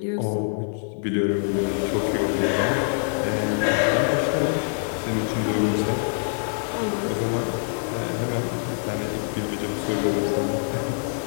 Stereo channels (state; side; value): silent; right; digital silence